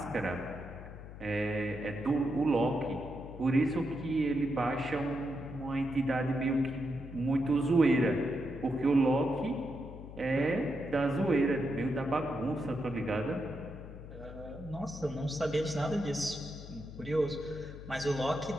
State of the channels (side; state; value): left; noise; hum, 13 dB below the sound